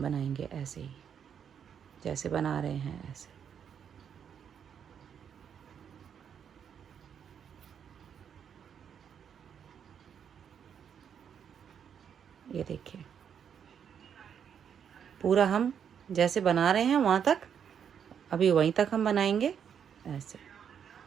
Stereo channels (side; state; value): left; quieter; 8.0 dB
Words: बनाएंगे ऐसे ही जैसे बना रहे हैं ऐसे। ये देखिए पूरा हम जैसे बना रहे हैं वहाँ तक, अभी वहीं तक हम बनाएंगे ऐसे।